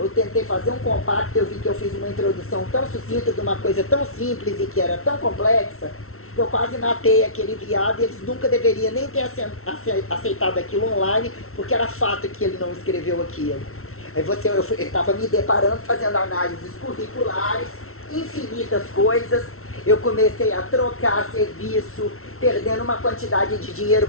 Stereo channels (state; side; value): late; right; 0.63 ms